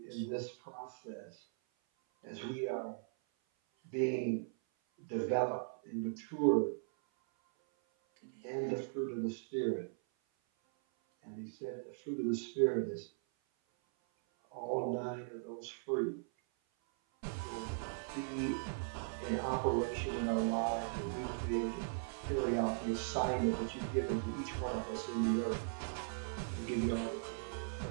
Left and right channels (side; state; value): left; silent; 52 dB below the other